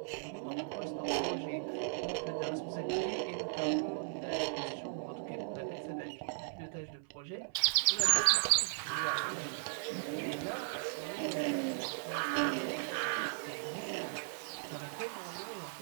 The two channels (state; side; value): silent; left; 53 dB below the other